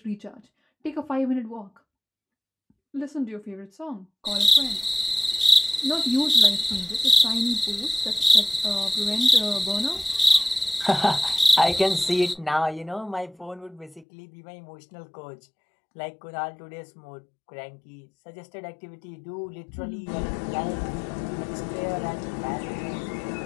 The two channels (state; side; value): drops out; right; at 14.1 s